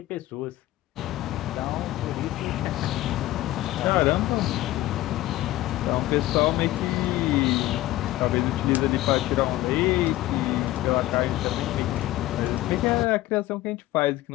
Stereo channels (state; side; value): quieter; right; 16.1 dB